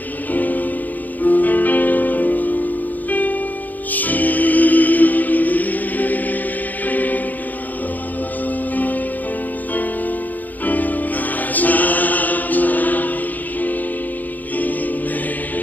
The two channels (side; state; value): right; late; 0.083 ms